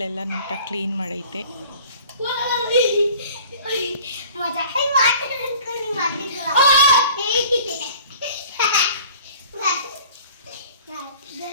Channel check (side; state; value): both; inverted; correlation -0.48